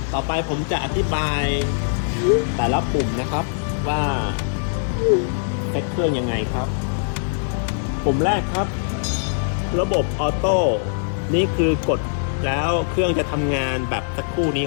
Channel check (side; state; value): right; silent; 64 dB below the other